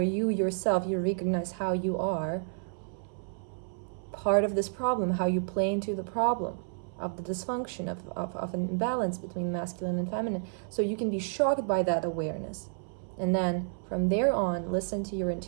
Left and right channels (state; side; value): silent; left; 57 dB below the other